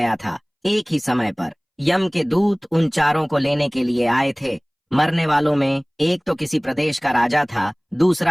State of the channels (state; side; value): identical; both; correlation 1.00